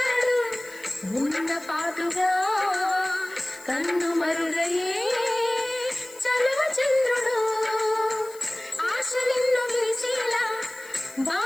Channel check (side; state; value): left; noise; hiss, 21 dB below the sound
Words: ఉన్న పాటుగా కన్ను మరుగయే చలువ చంద్రుడు ఆశలెన్నో వేసేలా